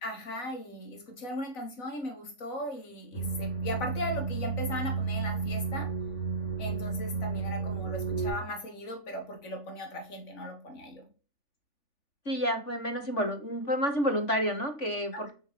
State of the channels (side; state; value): right; late; 3.4 ms